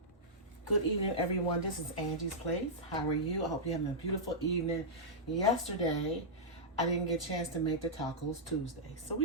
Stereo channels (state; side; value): normal; both; correlation -0.11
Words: Good evening, everyone. This is Angie's Place. How are you? I hope you're having a beautiful evening. Yesterday, I didn't get a chance to make the Tacos Tuesday, so